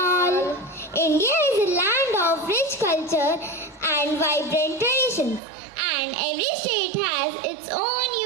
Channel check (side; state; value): left; drops out; at 5.4 s